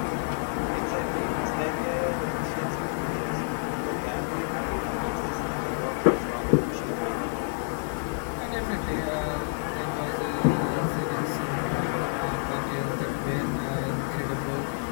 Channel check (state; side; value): silent; right; digital silence